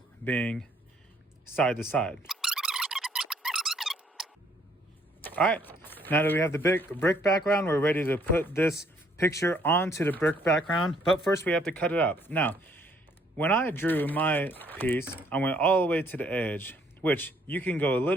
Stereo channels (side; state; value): both; normal; correlation 0.65